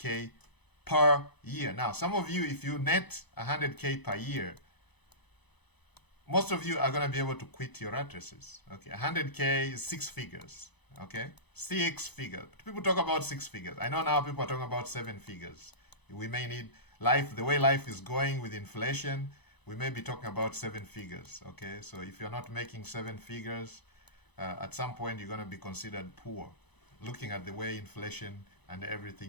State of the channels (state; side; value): late; right; 0.99 ms